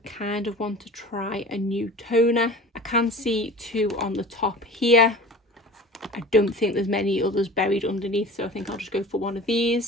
kind of want to try a new toner. I can see 2 on the top here. I don't think there's many others buried underneath, so I think I'll just go for one of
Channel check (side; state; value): both; normal; correlation 0.39